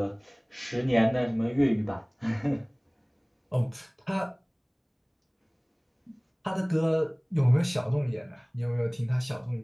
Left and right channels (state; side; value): identical; both; correlation 1.00